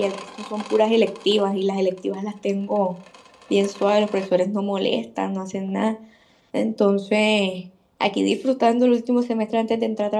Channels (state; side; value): identical; both; correlation 1.00